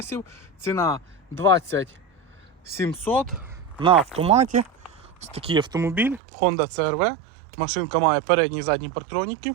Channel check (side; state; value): left; drops out; at 6.2 s